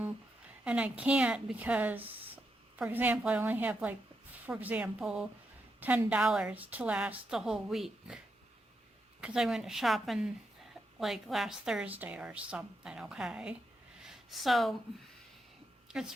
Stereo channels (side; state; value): both; normal; correlation 0.83